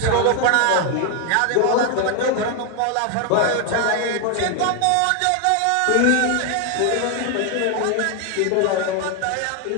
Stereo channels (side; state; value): both; different; correlation 0.01